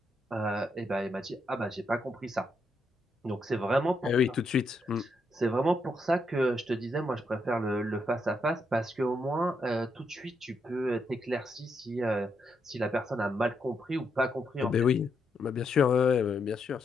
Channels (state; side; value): normal; both; correlation 0.80